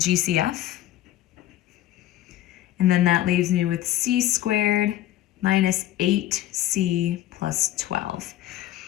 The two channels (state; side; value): quieter; right; 13.7 dB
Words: And then that leaves me with c squared minus 8c plus 12.